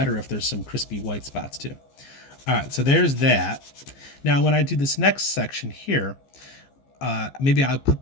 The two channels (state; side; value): late; right; 15 ms